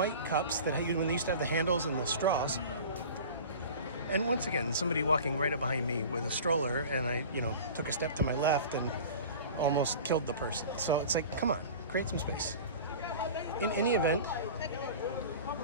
cups that when they used to have the handles and the straws. And once again, somebody walking right up behind me with a stroller, and I, took a step to my left and almost killed the person. So it's like, come on, create some space. In any event,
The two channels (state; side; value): inverted; both; correlation -0.38